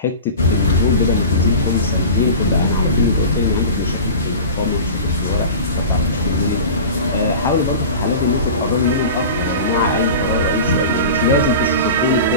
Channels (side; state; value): both; inverted; correlation -0.34